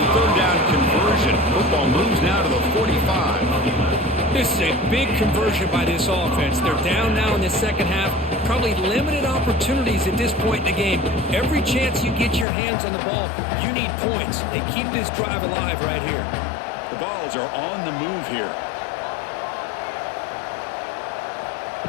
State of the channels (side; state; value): right; drops out; at 12.5 s